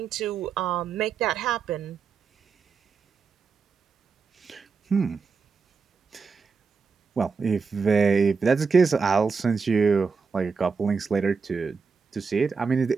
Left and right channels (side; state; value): left; quieter; 5.2 dB